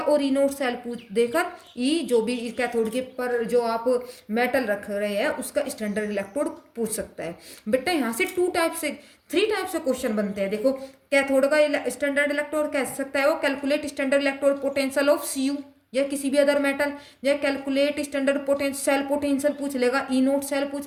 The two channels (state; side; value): identical; both; correlation 1.00